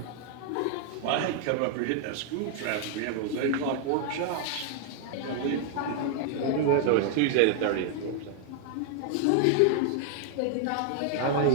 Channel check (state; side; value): different; both; correlation 0.00